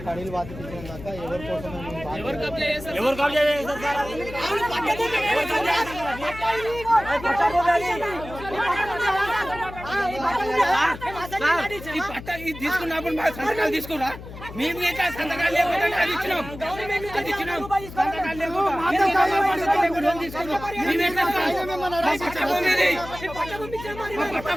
తీసుకున్నప్పుడు మా సంతకాలు తీసుకురా మేము సంతకాలు లేకుండా అది ఇచ్చినాం సంతకాలు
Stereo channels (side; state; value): left; noise; hum, 13 dB below the sound